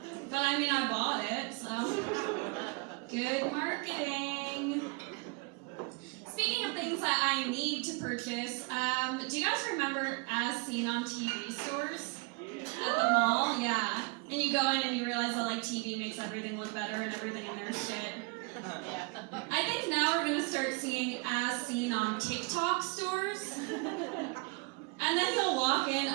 But I mean, I bought it, so good marketing. Speaking of things that I need to purchase, do you guys remember As Seen on TV stores? At the mall? Yeah. And you go in and you realize that like TV makes everything look better and everything in there is shit. I think now we're going to start seeing As Seen on TikTok stores. And then you'll walk in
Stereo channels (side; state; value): left; quieter; 30.5 dB